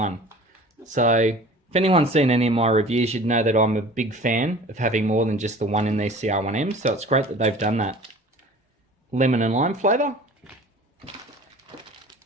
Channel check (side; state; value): both; normal; correlation 0.44